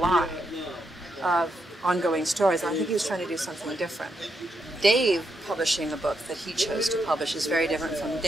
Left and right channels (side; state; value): both; normal; correlation 0.81